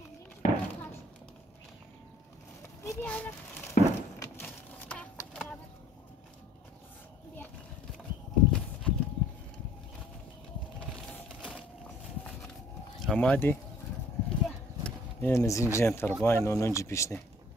Hamadi? Yine zinciren tarafı aynı 10. pişti.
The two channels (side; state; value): both; normal; correlation 0.57